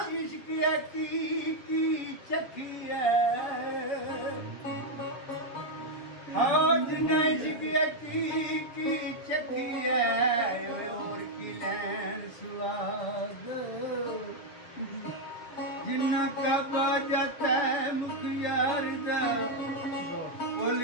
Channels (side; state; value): right; late; 7.1 ms